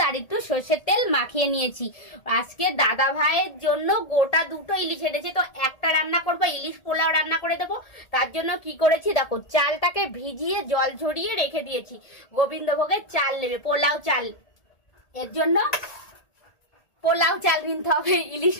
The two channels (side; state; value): right; late; 1.8 ms